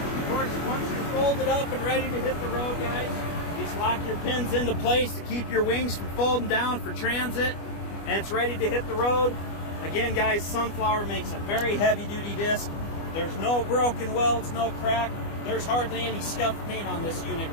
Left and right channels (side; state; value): right; late; 25 ms